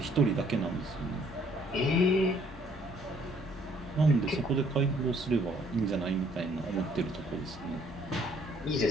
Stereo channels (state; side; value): normal; both; correlation 0.62